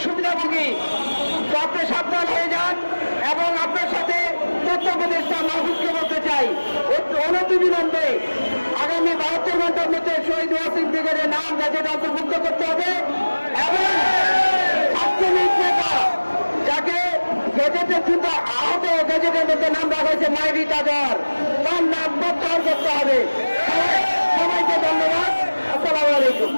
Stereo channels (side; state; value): both; inverted; correlation -1.00